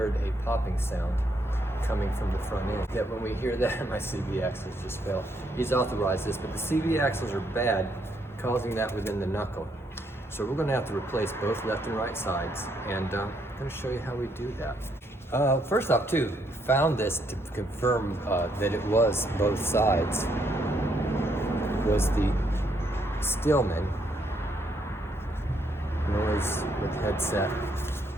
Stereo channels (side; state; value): both; normal; correlation 0.73